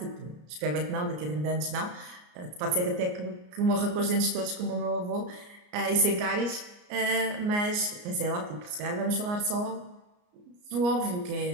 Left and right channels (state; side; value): late; left; 34 ms